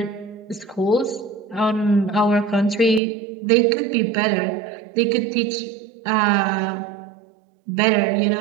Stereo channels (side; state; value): left; drops out; at 3.0 s